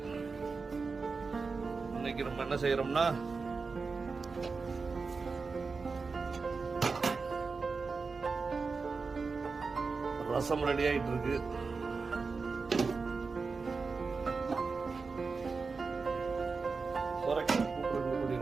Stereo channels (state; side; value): quieter; left; 4.5 dB